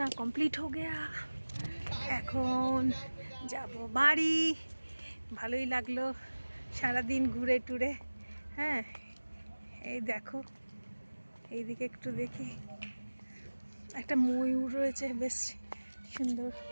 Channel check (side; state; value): both; inverted; correlation -1.00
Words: কমপ্লিট হো গেয়া, এখন যাব বাড়ি। ভালোই লাগলো সারাদিন ঘুরে টুরে। হ্যাঁ, এই দেখো, এইদিকে একটু দেখি, একটা ময়ূর রয়েছে, বেশ সুন্দর,